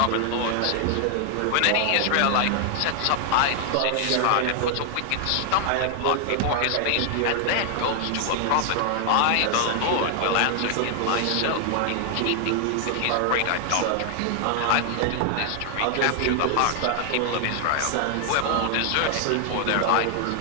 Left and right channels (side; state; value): both; different; correlation 0.00